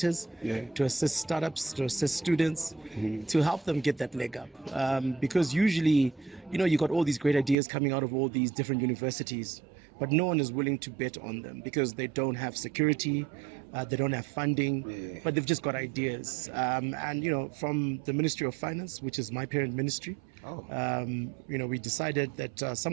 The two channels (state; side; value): drops out; left; at 7.6 s